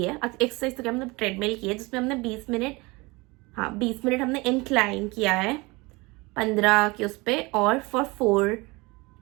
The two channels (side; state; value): left; quieter; 24.5 dB